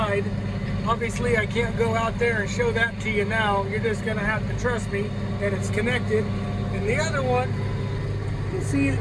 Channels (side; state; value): both; identical; correlation 1.00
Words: Obviously, I can't go out there and show that to you now. You're just gonna have to trust me that it's connected. And the other one, you see it